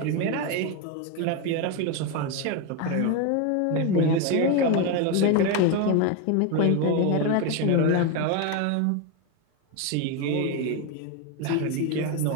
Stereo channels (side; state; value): both; different; correlation 0.02